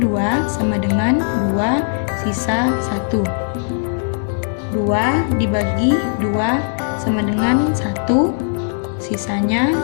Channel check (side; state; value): right; silent; 67 dB below the other